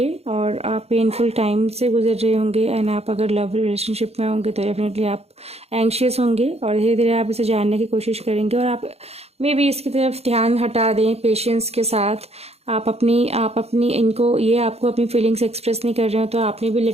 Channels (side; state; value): left; late; 0.30 ms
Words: और आप पेनफुल टाइम से गुजर रहे होंगे एंड आप अगर लव रिलेशनशिप में होंगे तो डेफिनेटली आप एंग्शियस होंगे, और धीरे धीरे आप इसे जानने की कोशिश करेंगे और आप मे भी इसकी तरफ ध्यान हटा दें पेशेंस के साथ। आप अपनी इनको ये आपको अपनी फीलिंग्स एक्सप्रेस नहीं कर रहे हो तो आपने भी